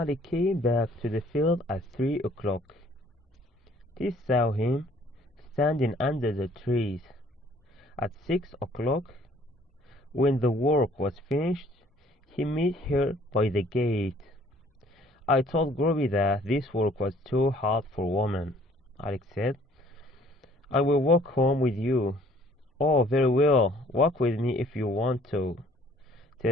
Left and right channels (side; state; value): both; normal; correlation 0.58